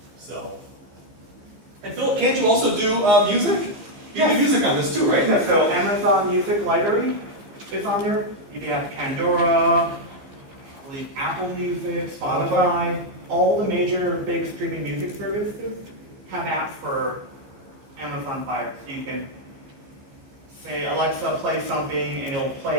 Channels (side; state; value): left; late; 15 ms